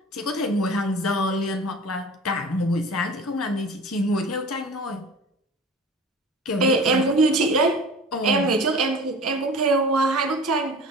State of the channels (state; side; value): normal; both; correlation 0.39